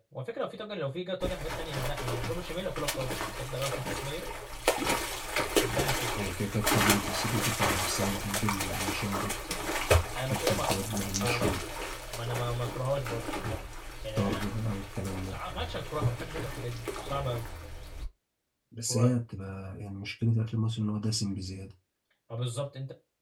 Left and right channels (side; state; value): both; identical; correlation 1.00